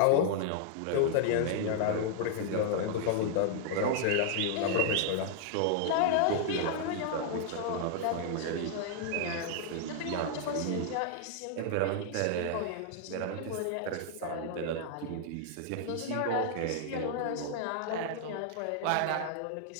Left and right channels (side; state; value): both; different; correlation -0.01